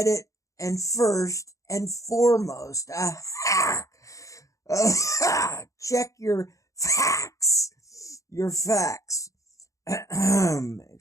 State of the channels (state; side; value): late; right; 0.16 ms